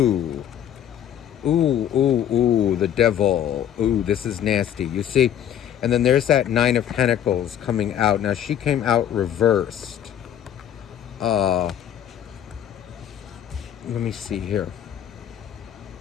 the devil. Ooh, this is nasty. You see? And then there's that Nine of Pentacles coming out. Now, she came out reversed. Let me see here.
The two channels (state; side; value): quieter; right; 10.1 dB